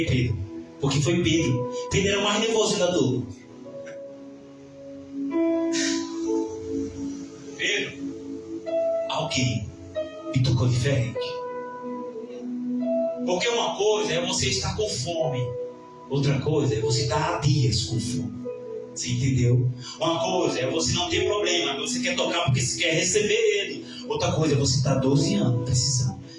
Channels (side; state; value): both; identical; correlation 1.00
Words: Pedro. Porque foi Pedro. Pedro era o mais nervoso da turma. Pedro, alguém me tocou diferente. Porque uma coisa é você estar com fome, outra coisa é você estar há dias com fome. Você entendeu? Uma coisa é você não ter problema, você quer tocar porque você quer receber ele. Outra coisa é você estar 12 anos precisando